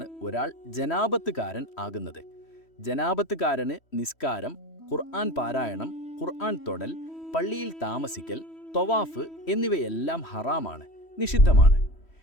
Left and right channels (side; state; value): right; late; 3.1 ms